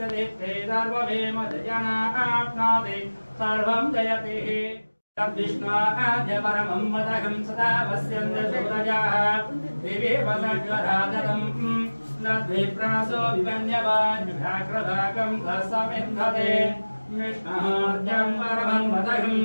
दीप्ते सर्ववेमजनाप्नोति सर्वं जयति तद्विष्णुआद्यपरमं वदहं सदा वस्यन्ते सूरजाः दिवे वदज्वराजतम् नद्विप्रासो विवन्यवान्युघाग्रभागं तस्समिन्धते विष्णोर्जं परमं वदहं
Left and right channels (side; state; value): both; inverted; correlation -1.00